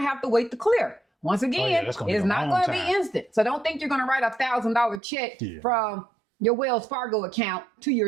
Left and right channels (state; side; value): drops out; left; at 5.0 s